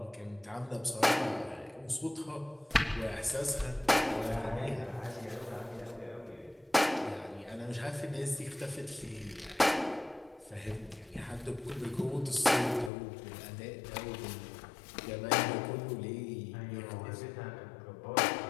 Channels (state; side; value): drops out; right; at 12.9 s